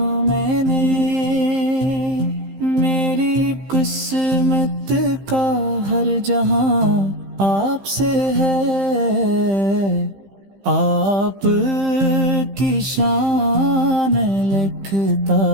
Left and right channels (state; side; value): late; left; 15 ms